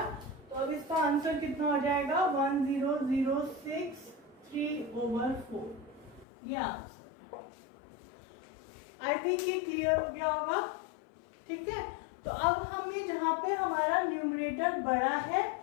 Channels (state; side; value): drops out; right; at 6.2 s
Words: तो अब इसका आंसर कितना हो जाएगा, 1006 3/4, ये आंसर। आई थिंक ये क्लियर हो गया होगा। ठीक है, तो अब हमें जहाँ पे हमारा न्यूमरेटर बड़ा है